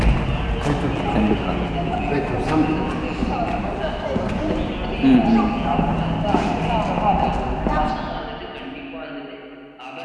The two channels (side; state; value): both; identical; correlation 1.00